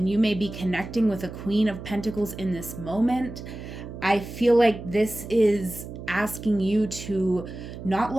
you may be connecting with a Queen of Pentacles in this moment. I feel like this is asking you to not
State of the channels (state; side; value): noise; right; hum, 11 dB below the sound